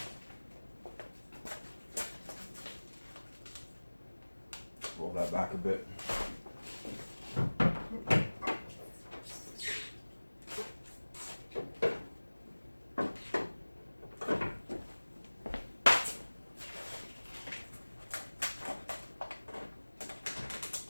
Roll that back a bit.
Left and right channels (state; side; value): inverted; both; correlation -1.00